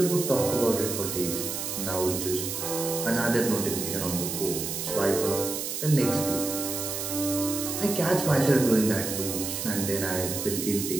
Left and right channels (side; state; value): right; noise; hiss, 4 dB below the sound